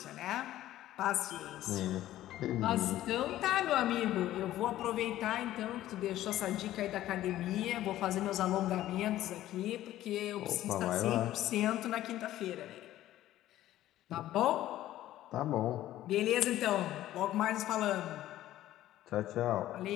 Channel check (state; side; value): quieter; right; 13.9 dB